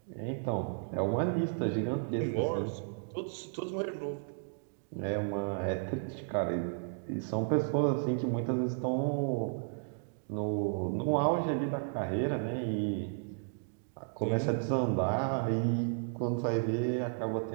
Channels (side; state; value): left; silent; digital silence